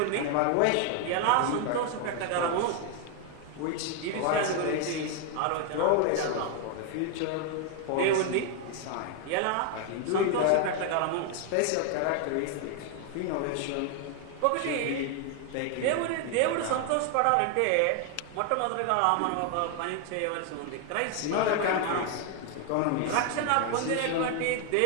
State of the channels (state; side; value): different; both; correlation 0.00